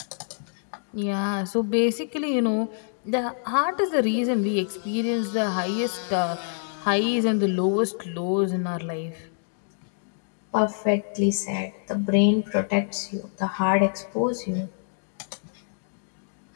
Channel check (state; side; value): silent; right; digital silence